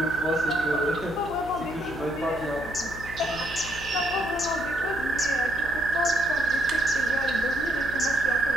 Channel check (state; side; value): noise; left; hum, 13 dB below the sound